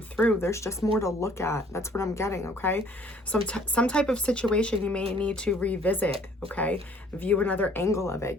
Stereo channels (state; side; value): normal; both; correlation 0.57